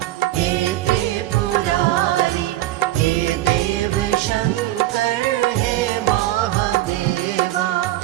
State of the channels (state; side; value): quieter; left; 15.5 dB